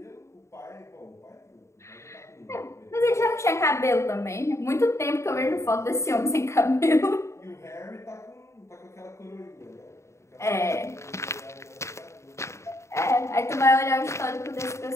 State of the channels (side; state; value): right; late; 0.14 ms